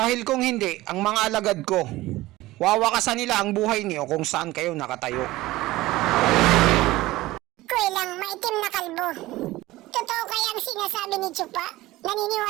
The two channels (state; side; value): quieter; left; 18.0 dB